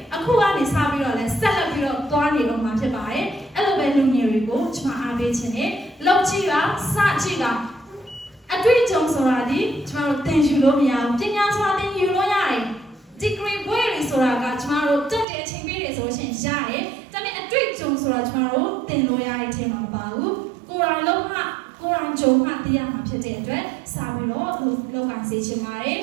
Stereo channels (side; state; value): left; drops out; at 15.2 s